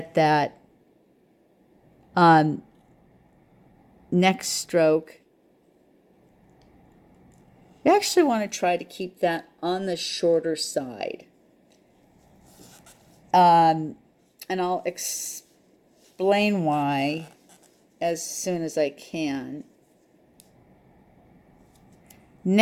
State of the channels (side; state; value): both; identical; correlation 1.00